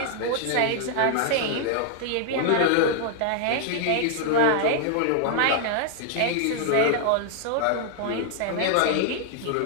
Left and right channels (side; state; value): both; different; correlation 0.00